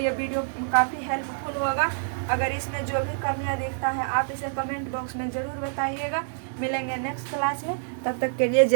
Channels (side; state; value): left; silent; 60 dB below the other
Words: वीडियो काफ़ी हेल्पफुल होगा। अगर इसमें जो भी कमियां दिखता है आप इसे कमेंट बॉक्स में ज़रूर बताइएगा। मिलेंगे नेक्स्ट क्लास में, तब तक के लिए